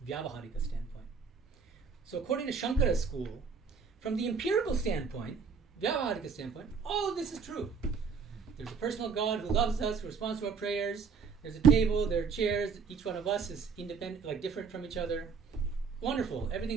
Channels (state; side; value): quieter; left; 5.6 dB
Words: Vyavaharika standpoint. So according to Shankara's school, from the empirical standpoint, Vyavaharika standpoint, all of this is true. There's a personal God who loves us, who responds to our prayers. There's a table, there are chairs. Each one of us is independent, like different from each other. Wonderful.